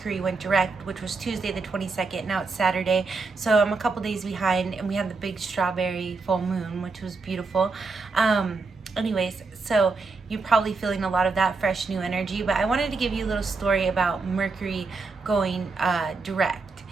went direct, which was Tuesday the 22nd. Now it's Saturday, so I'm a couple days behind, and we had the big strawberry full moon, which was beautiful. Anyways, so you're probably feeling a lot of that fresh new energy, but I wanted to give you a little story about Mercury going direct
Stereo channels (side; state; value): left; quieter; 4.1 dB